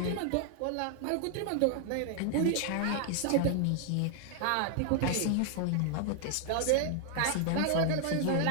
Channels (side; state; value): both; different; correlation 0.00